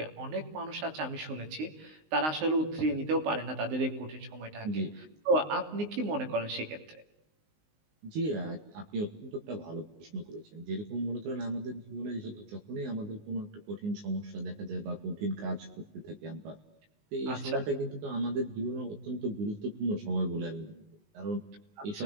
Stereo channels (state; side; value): late; left; 19 ms